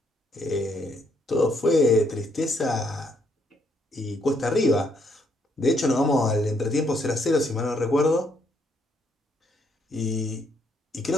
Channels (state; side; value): normal; both; correlation 0.72